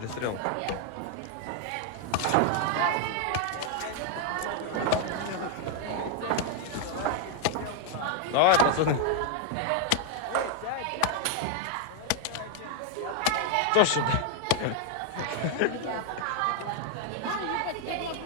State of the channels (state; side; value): different; both; correlation 0.00